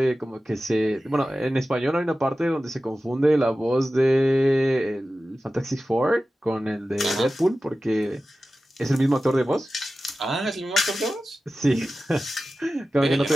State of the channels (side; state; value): both; normal; correlation 0.95